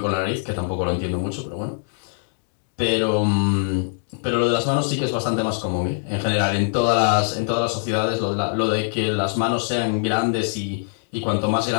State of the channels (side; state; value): right; silent; digital silence